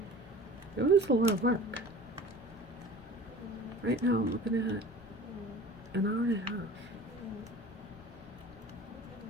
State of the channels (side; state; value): left; noise; rumble, 21 dB below the sound